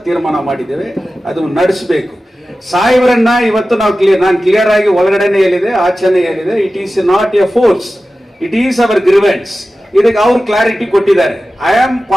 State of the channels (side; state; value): both; normal; correlation 0.95